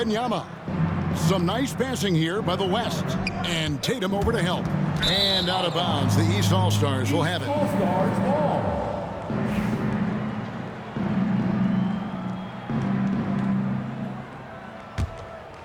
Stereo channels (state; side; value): identical; both; correlation 1.00